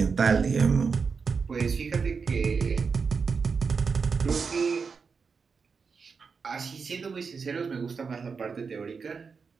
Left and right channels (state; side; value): quieter; left; 5.3 dB